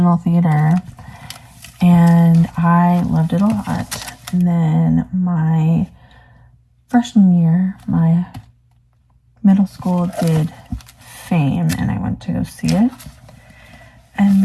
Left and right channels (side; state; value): both; identical; correlation 1.00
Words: theater, and I loved it a lot. And then my freshman year, my middle school did Fame, and I went to go see it. And